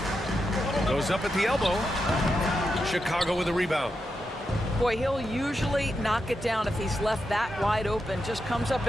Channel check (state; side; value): normal; both; correlation 0.87